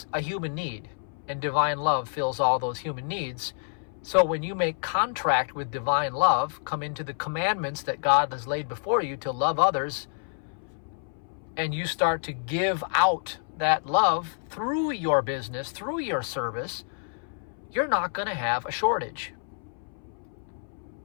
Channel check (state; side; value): silent; right; 59 dB below the other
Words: a human need, and divine love fills all those human needs. So when you make contract with divine love, come into the commandments that God has laid before you to love others, and you start to give out that love through your business, through your service, you're not going to have a shortage.